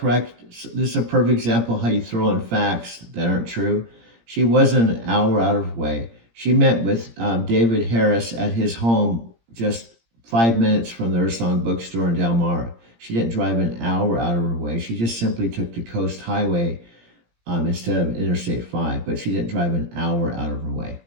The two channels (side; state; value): left; late; 17 ms